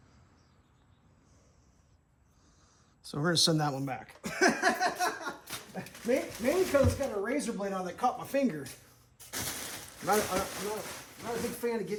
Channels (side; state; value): both; identical; correlation 1.00